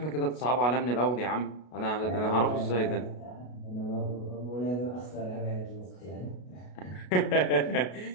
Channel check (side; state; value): right; late; 33 ms